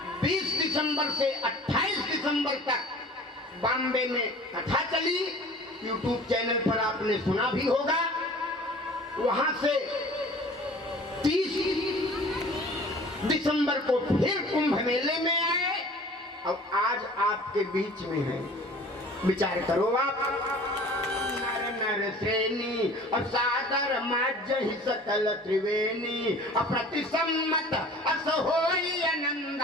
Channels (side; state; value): both; normal; correlation 0.45